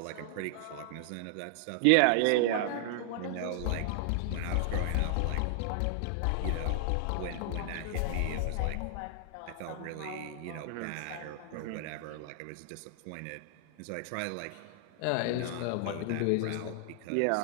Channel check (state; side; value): different; both; correlation 0.00